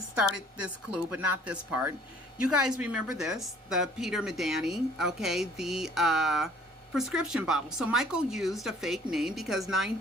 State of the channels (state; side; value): normal; both; correlation 0.55